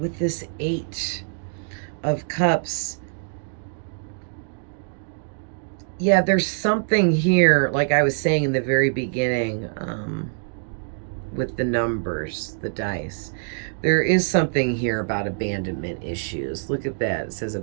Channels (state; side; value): silent; left; digital silence